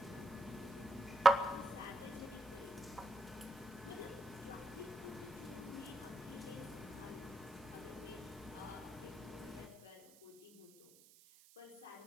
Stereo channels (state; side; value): noise; right; hiss, 22 dB below the sound